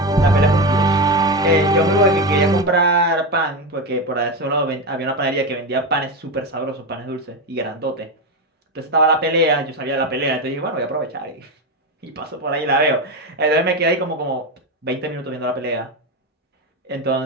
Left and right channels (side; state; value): both; normal; correlation 0.15